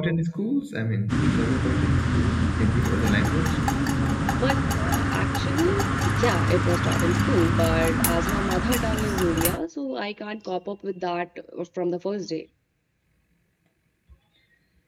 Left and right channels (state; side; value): identical; both; correlation 1.00